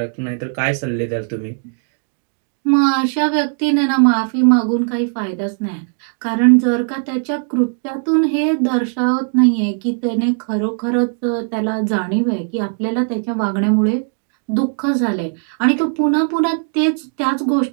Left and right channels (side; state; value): left; silent; 56 dB below the other